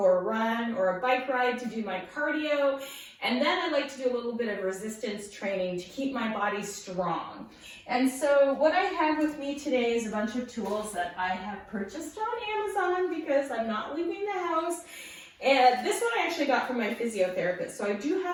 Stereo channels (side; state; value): both; identical; correlation 1.00